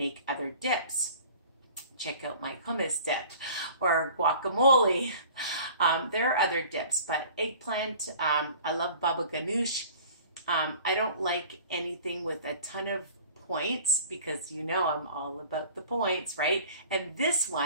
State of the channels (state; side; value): inverted; both; correlation -0.46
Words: other dips. Check out my hummus dip or guacamole. There are other dips, but eggplant, I love baba ganoush. I don't like anything with a ton of points because you know I'm all about the points, right? And this